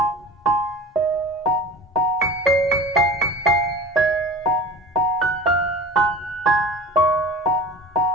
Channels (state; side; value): normal; both; correlation 0.37